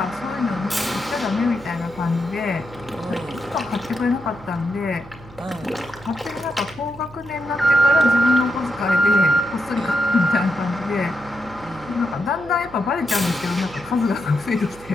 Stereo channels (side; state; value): right; noise; hum, 20 dB below the sound